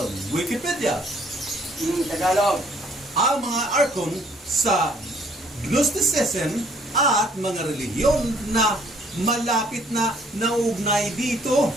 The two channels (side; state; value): both; normal; correlation 0.62